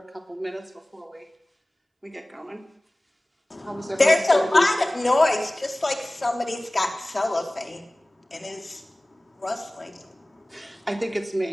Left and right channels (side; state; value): both; normal; correlation 0.98